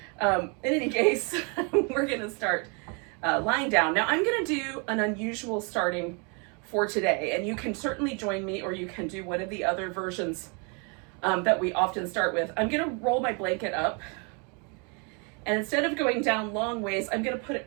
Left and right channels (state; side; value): quieter; left; 34.6 dB